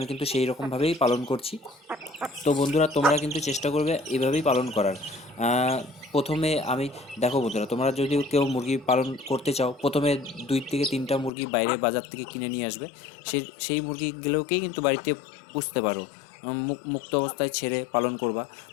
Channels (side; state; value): right; drops out; at 11.3 s